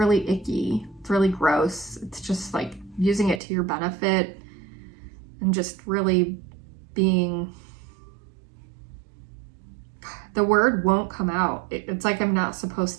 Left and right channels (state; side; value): drops out; left; at 3.4 s